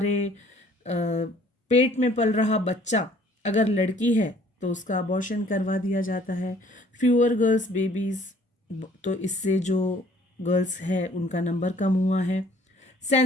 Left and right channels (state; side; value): normal; both; correlation 0.57